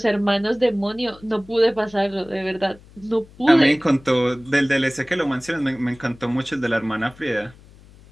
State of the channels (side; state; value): left; noise; hum, 24 dB below the sound